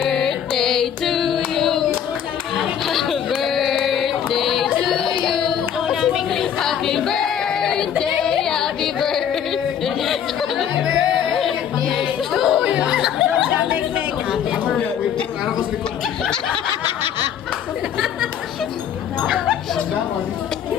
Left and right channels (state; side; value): quieter; right; 8.9 dB